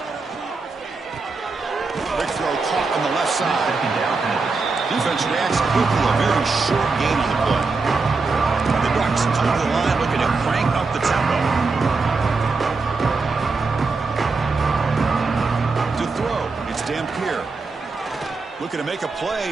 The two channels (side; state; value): left; quieter; 4.1 dB